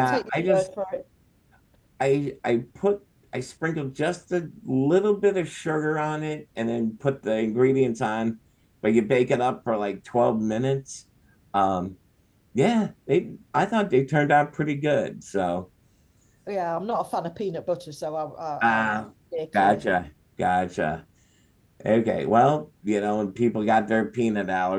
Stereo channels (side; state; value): both; identical; correlation 1.00